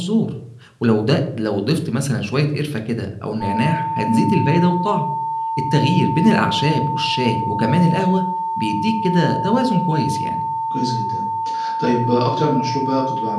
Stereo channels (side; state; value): both; identical; correlation 1.00